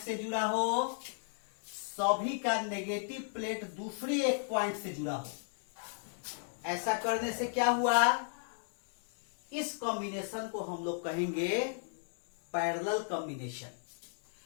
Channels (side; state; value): right; silent; digital silence